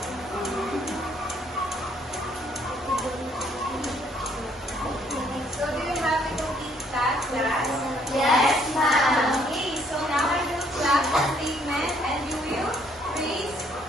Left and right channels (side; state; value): both; normal; correlation 0.66